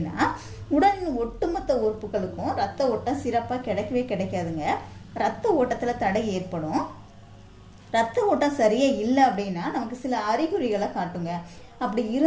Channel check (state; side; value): identical; both; correlation 1.00